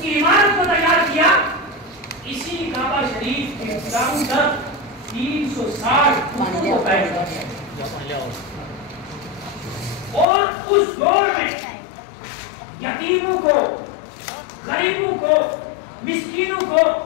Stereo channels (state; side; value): drops out; right; at 10.2 s